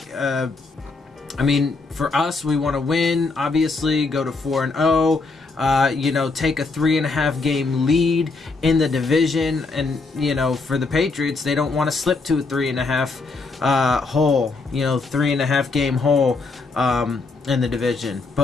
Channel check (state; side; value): quieter; right; 3.9 dB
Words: For us, we want to win, obviously, go to 4-0. Take a 3.5 game lead in the division, and for the Patriots, they don't want to slip to a 3.5 game hole in the division.